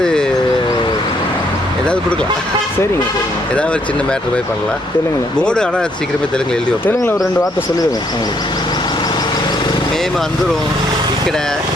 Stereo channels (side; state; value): both; normal; correlation 0.70